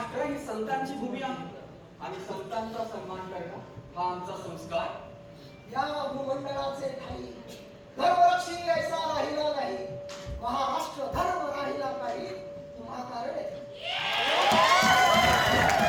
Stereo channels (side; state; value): both; identical; correlation 1.00